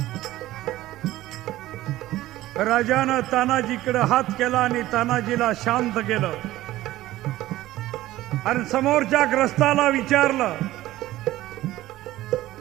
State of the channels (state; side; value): quieter; left; 15.9 dB